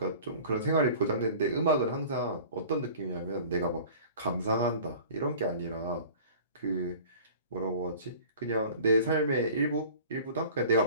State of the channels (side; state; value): both; inverted; correlation -0.44